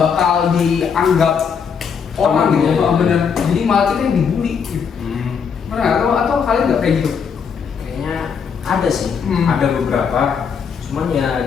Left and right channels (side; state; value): right; quieter; 6.6 dB